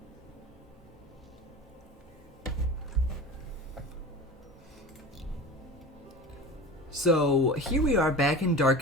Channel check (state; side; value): normal; both; correlation 0.33